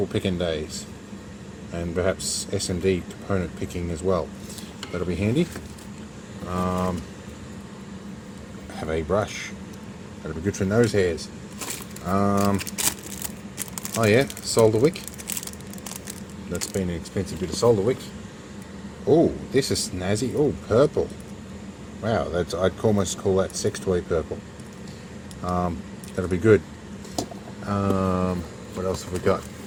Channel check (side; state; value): both; identical; correlation 1.00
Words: picking days, and perhaps S&D component picking as well. That'll be handy. Have a brush. That'll be good for nose hairs. Oh yeah, solder wick. That's been an expensive bit of solder wick. Oh, this is snazzy. Oh, purple. Wow, that's, I'd almost call that sex toy purple. That'll be good. What else have we got?